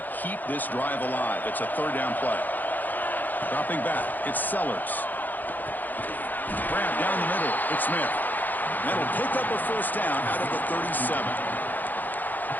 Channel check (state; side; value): late; right; 0.085 ms